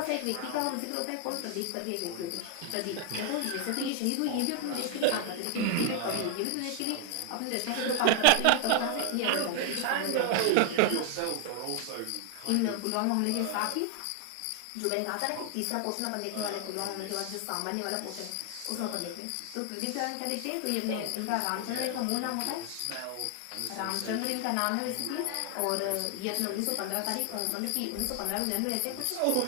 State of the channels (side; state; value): both; different; correlation 0.00